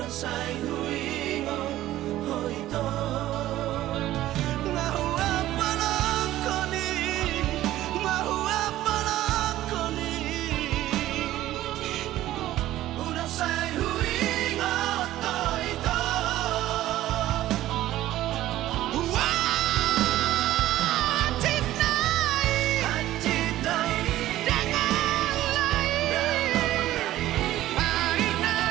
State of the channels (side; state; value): left; quieter; 14.6 dB